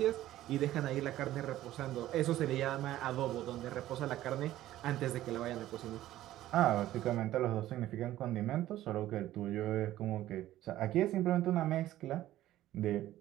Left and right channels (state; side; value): quieter; left; 14.2 dB